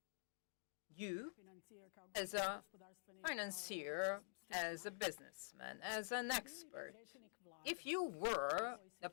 you, as a financier, as a businessman, as an expert, if you were the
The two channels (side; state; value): right; silent; digital silence